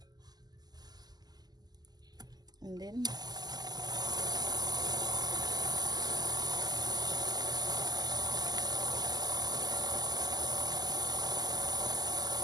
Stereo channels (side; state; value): left; late; 0.20 ms